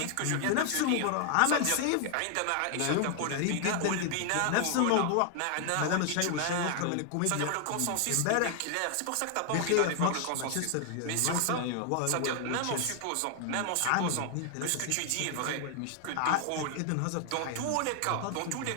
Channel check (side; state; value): both; different; correlation 0.00